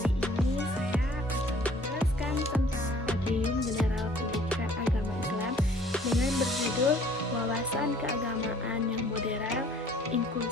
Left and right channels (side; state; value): both; normal; correlation 0.55